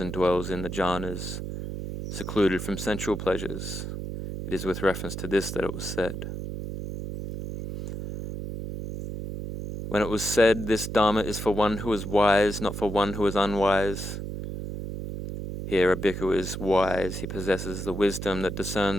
dwells in the jhanas, secluded from sensual pleasures. It is with reference to this that it was said. When it was said, this Dharma is for one who is wise, not for one who is unwise. Here a bhikkhu is wise. He possesses the wisdom that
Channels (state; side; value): noise; right; hum, 6 dB below the sound